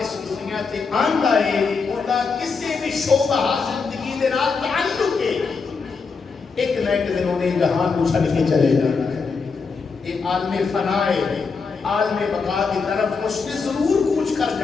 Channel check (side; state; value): right; quieter; 4.9 dB